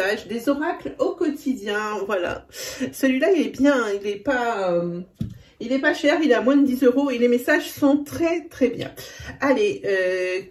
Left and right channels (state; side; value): identical; both; correlation 1.00